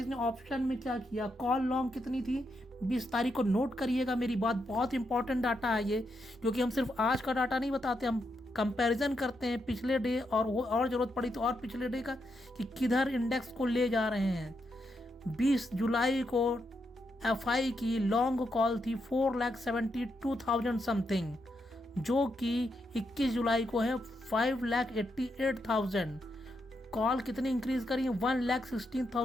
ने ऑप्शन में क्या किया। कॉल लॉन्ग कितनी थी 20 तारीख को, नोट करिएगा मेरी बात। बहुत इंपॉर्टेंट डाटा है ये, क्योंकि हम सिर्फ आज का डाटा नहीं बताते, हम कंपैरिजन करते हैं पिछले डे और वो, और ज़रूरत पड़ी तो और पिछले डे का, कि किधर इंडेक्स को ले जा रहे हैं। 20 जुलाई को एफआई की लॉन्ग कॉल थी 4,72,000 समथिंग, जो कि 21 जुलाई को है 5,88,000। कॉल कितनी इंक्रीज करी है,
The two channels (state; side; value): normal; both; correlation 0.82